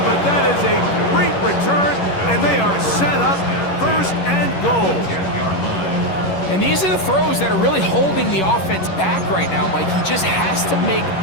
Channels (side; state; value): right; late; 11 ms